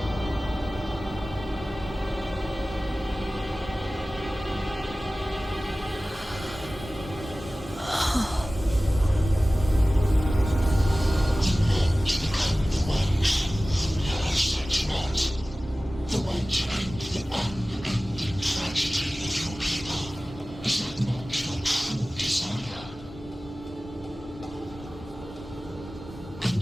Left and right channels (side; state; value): both; normal; correlation 0.97